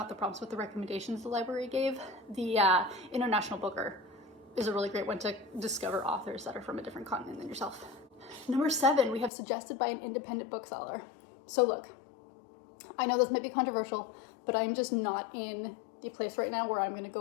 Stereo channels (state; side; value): drops out; right; at 9.3 s